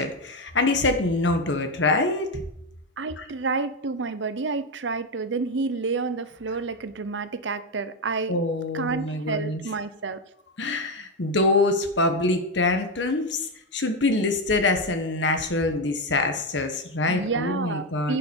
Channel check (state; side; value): normal; both; correlation 0.10